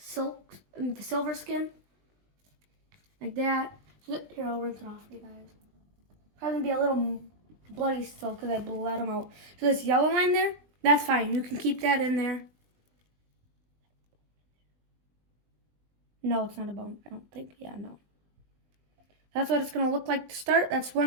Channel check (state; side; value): late; left; 20 ms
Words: skin. Like that. Here, I'll rinse it off for you guys. Probably gonna be a little bloody still because I bled them out. So this yellow line there, that's fine. You can keep that in there. No, it's not a bone. I don't think. Yeah, no. That's what it's gonna look like to start. That's